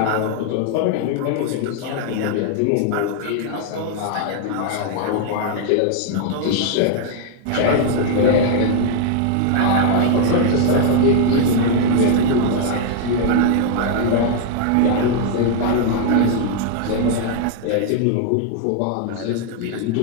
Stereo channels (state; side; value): different; both; correlation 0.00